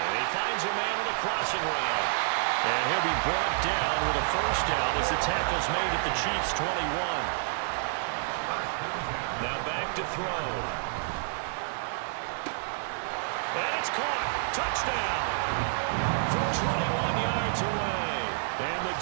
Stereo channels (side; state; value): left; silent; 58 dB below the other